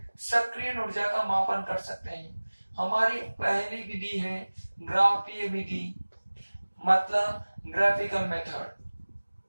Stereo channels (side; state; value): both; inverted; correlation -1.00